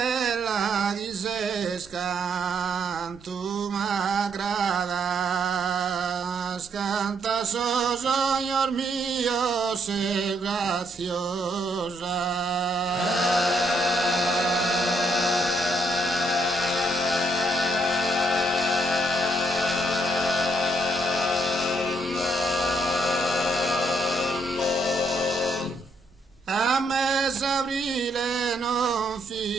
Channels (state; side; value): normal; both; correlation 0.73